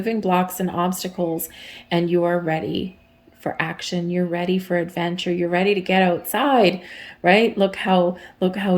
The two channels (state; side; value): identical; both; correlation 1.00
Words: blocks and obstacles, and you are ready for action. You're ready for adventure. You're ready to get outside, right? Look how